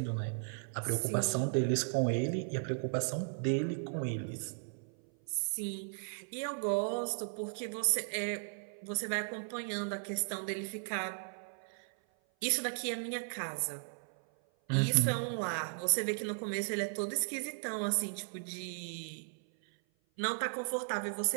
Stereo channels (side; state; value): left; silent; 54 dB below the other